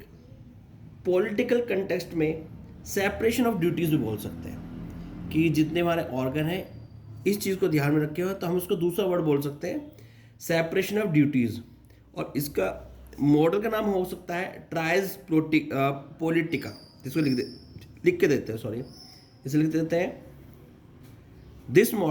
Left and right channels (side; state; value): both; identical; correlation 1.00